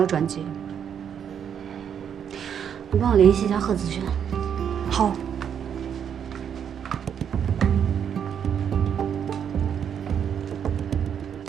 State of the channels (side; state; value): left; quieter; 8.3 dB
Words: 转机。你帮我联系一下贺子轩。好。